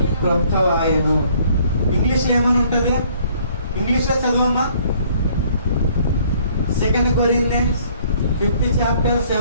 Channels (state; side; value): inverted; both; correlation -0.60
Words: క్రొత్తవాయెను. ఇంగ్లీష్ లో ఏమని ఉంటది? ఇంగ్లీష్ లో చదవమ్మా. 2 Corinthians 5th chapter